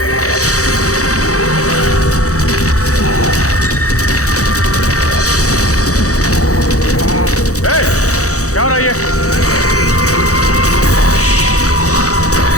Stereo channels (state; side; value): late; right; 0.65 ms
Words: क्या हो रहा है ये?